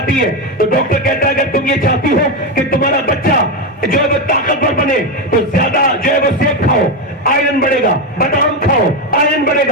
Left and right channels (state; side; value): normal; both; correlation 0.11